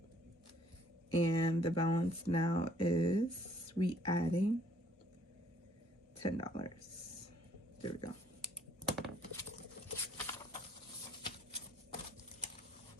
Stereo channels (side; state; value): both; normal; correlation 0.62